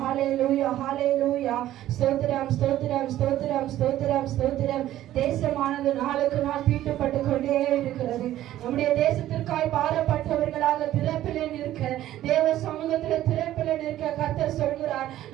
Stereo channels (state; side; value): quieter; left; 13.5 dB